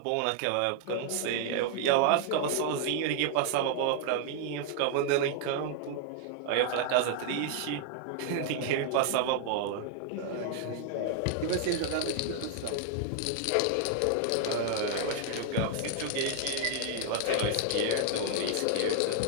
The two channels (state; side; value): different; both; correlation 0.00